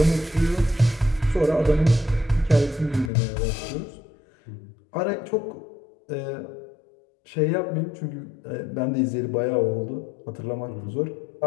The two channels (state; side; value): drops out; right; at 3.1 s